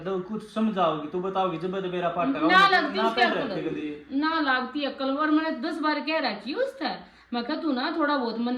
कुछ समझाओगी तू बताओगी जब मेरा पाटा ना लगती उसकी अक्ल, ना लगती अक्ल। और मैंने 10 बार कह रखी उससे, मैं कहा तू ना थोड़ा बहुत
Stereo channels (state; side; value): identical; both; correlation 1.00